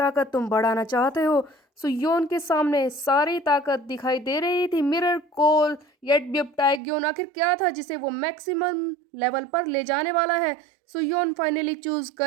तुम बढ़ाना चाहते हो। सुयोन के सामने सारी ताकत दिखाई दे रही थी। मिरर कोल येट टाइग्योन आखिर क्या था जिसे वो मैक्सिमम लेवल पर ले जाने वाला है। सुयोन फाइनली चूज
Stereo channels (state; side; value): drops out; left; at 6.8 s